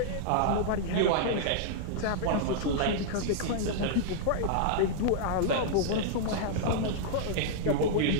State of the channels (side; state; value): both; different; correlation -0.01